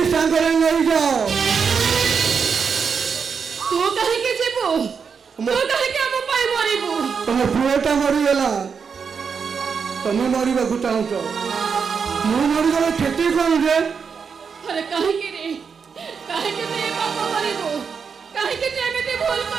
ସାଙ୍ଗରେ ନେଇଯାଅ। ତୁ କାହିଁକି ଯିବୁ? ତୁ କାହିଁକି ଆମ ପାଇଁ ମରିବୁ? ତମ ପୁଅଟା ମରିଗଲା, ତମେ ମରିବାକୁ ଚାହୁଁଛ, ମୁଁ ମରିଗଲେ କ୍ଷତି କଣ ଯେ? ଆରେ କାହିଁକି ରେ? କାହିଁକି ତୁ ଏ ପାପ କରିବୁ? କାହିଁକି ତୁ ଏମିତି ଭୁଲ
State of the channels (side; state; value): left; quieter; 6.1 dB